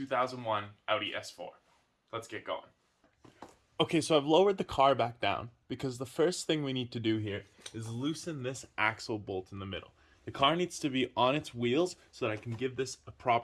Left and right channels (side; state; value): both; identical; correlation 1.00